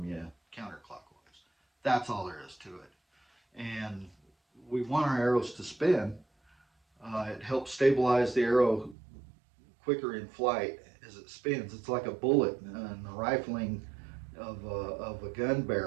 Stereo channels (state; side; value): drops out; left; at 9.0 s